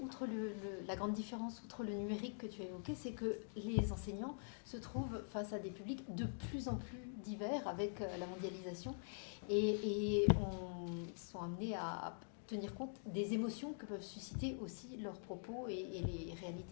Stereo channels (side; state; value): right; silent; digital silence